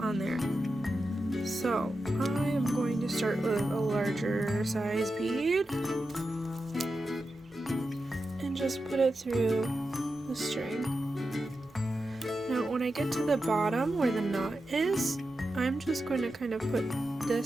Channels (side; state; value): both; normal; correlation 0.90